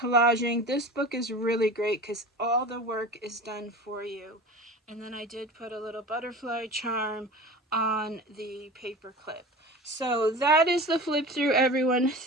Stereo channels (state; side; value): normal; both; correlation 0.35